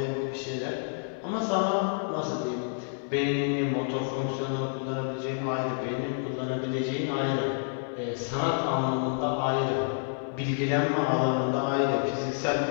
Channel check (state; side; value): silent; right; 59 dB below the other